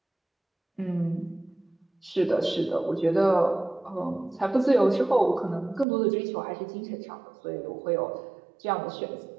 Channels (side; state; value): left; drops out; at 5.9 s